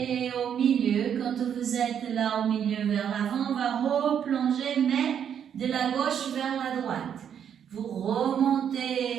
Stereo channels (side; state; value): left; quieter; 8.5 dB